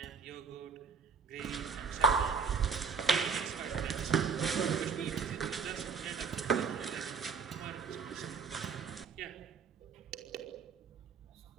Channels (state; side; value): quieter; left; 5.4 dB